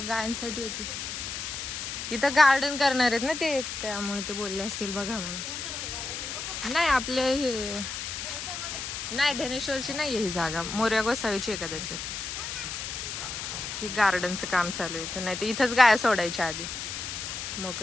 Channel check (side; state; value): left; noise; hiss, 5 dB below the sound